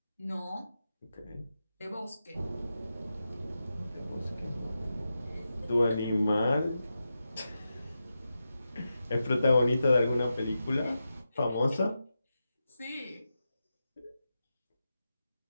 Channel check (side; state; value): both; inverted; correlation -0.90